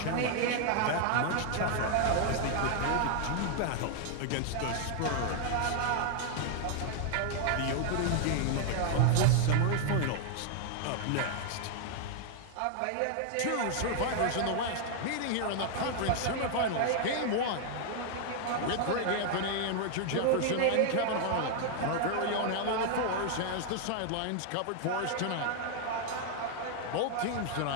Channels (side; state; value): both; different; correlation 0.00